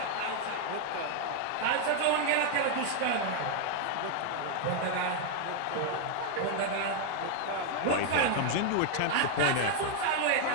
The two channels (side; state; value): both; different; correlation 0.00